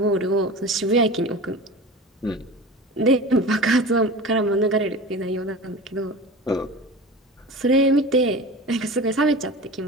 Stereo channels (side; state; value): both; normal; correlation 0.33